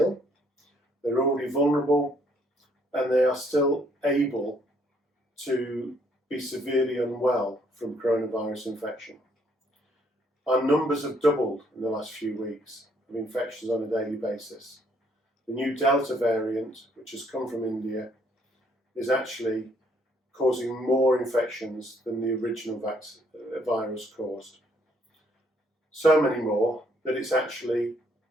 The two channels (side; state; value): both; normal; correlation 0.67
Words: they're already vulnerable, and they are still able to be severely unwell from coronavirus infection. Our numbers have doubled in the last few weeks of infections on a daily basis. The new Delta variant, which has come from India, is actually causing more infections than the original virus caused. So many more that it's actually